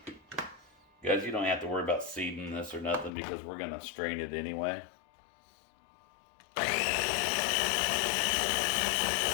Guys, you don't have to worry about seeding this or nothing because we're going to strain it anyway.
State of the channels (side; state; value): right; drops out; at 3.1 s